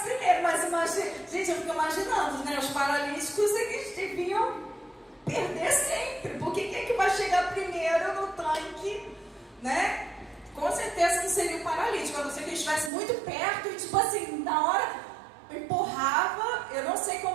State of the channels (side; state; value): left; drops out; at 12.9 s